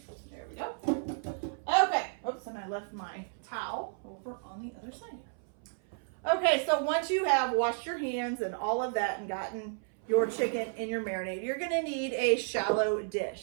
There we go. Okay. Oops, and I left my towel over on the other side here. Okay, so once you have washed your hands and all of that and gotten your chicken in your marinade, you're going to need a shallow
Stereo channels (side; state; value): left; silent; 56 dB below the other